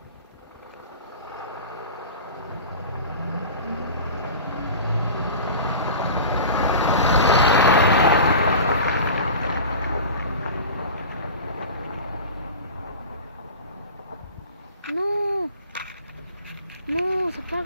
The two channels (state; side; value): inverted; both; correlation -0.36